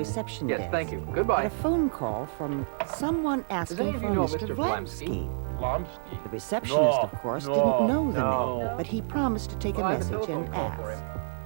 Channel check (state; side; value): silent; left; 59 dB below the other